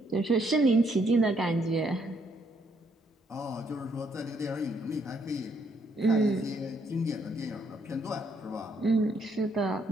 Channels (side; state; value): both; normal; correlation 0.71